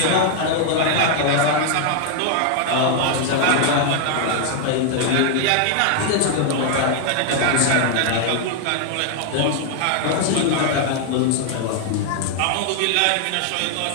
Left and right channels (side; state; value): both; different; correlation 0.00